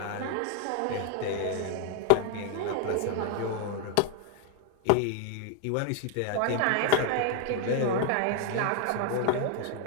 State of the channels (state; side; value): different; both; correlation 0.00